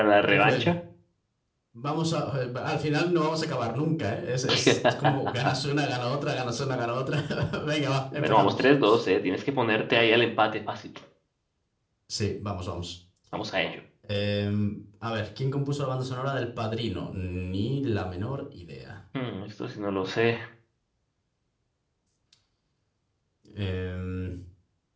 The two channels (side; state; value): both; identical; correlation 1.00